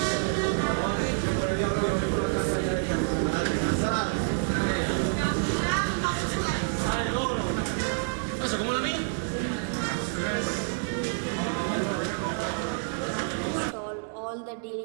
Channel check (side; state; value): left; silent; digital silence